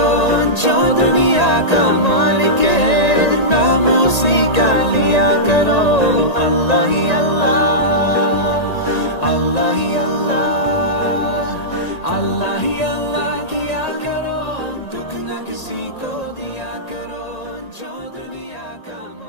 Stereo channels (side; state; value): right; late; 1.8 ms